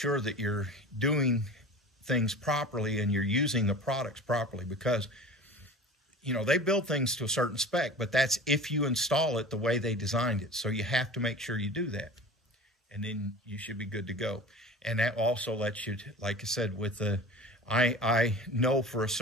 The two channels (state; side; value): normal; both; correlation 0.37